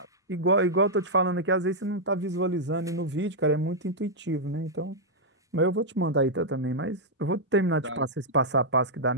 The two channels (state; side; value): normal; both; correlation -0.06